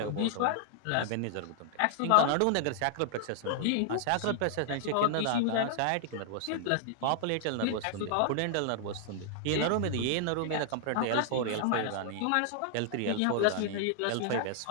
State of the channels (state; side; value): different; both; correlation 0.00